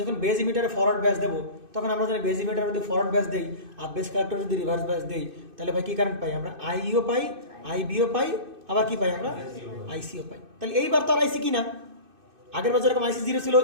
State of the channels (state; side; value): late; left; 2.6 ms